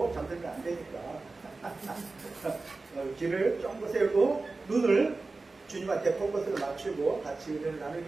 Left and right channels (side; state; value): left; quieter; 3.6 dB